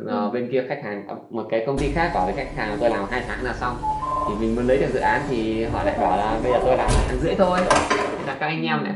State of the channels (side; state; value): both; identical; correlation 1.00